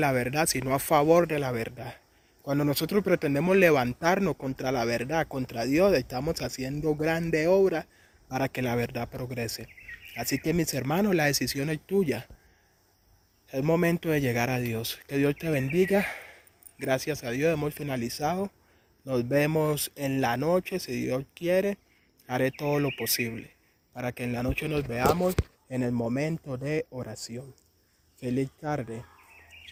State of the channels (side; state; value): both; identical; correlation 1.00